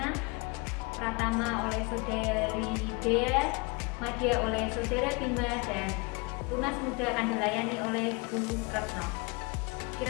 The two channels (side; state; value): right; quieter; 28.5 dB